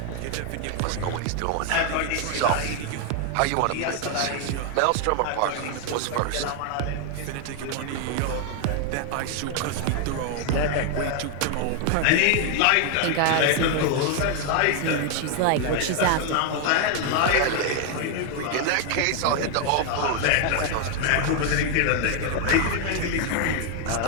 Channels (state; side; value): different; both; correlation 0.01